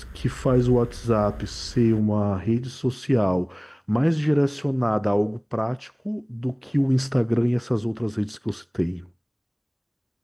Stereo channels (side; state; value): both; identical; correlation 1.00